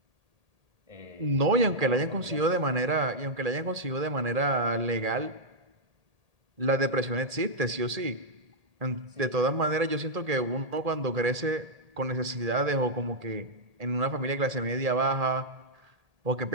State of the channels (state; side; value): late; left; 1.8 ms